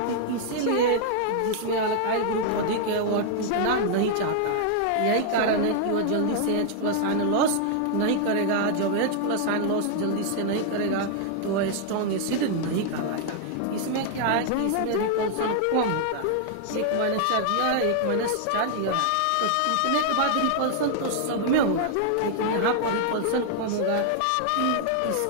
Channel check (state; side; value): different; both; correlation -0.01